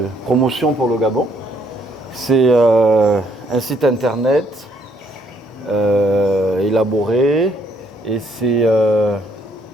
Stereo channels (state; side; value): normal; both; correlation 0.68